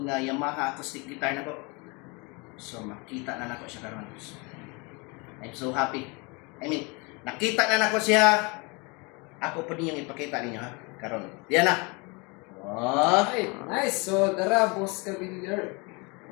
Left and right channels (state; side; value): quieter; right; 29.0 dB